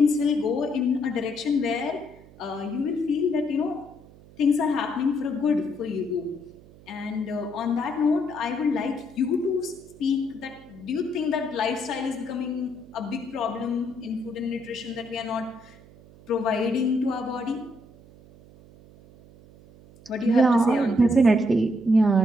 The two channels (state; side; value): noise; right; hum, 23 dB below the sound